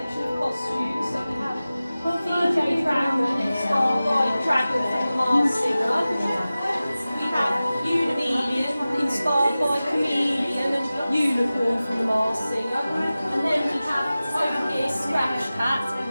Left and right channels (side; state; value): both; inverted; correlation -0.96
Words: of costumes. So we have DJ Dragon, inspired by Dragon from the Mars Singer. We have Unimelian, inspired by Chameleon and Unicorn from the Mars Singer. And then we have over here Scratch Cat,